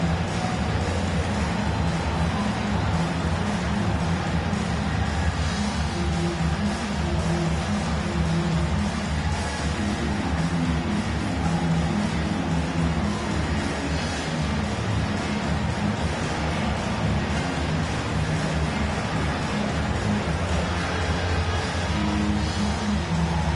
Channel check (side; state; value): both; identical; correlation 1.00